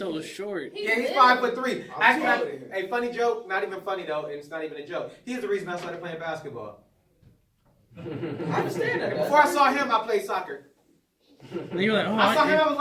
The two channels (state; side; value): identical; both; correlation 1.00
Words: short. Yeah, he's 5'3". Actually, a funny joke, not even funny though, and it's not even a joke. He's the reason I started playing basketball. I understand that. Before I saw him, I played soccer. And you're like, oh, I saw him, I was